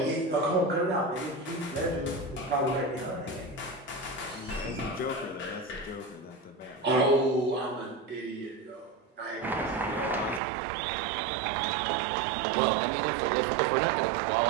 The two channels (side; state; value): left; drops out; at 10.4 s